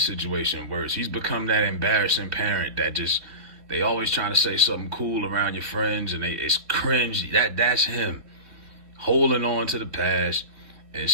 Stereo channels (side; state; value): left; late; 3.4 ms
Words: worse. He's become that embarrassing parent that they always trying to say something cool around your friends and it's cringe. That's him. Holding on to the past and